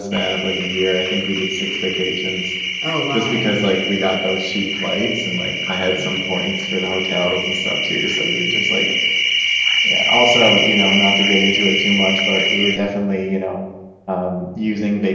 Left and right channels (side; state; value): both; identical; correlation 1.00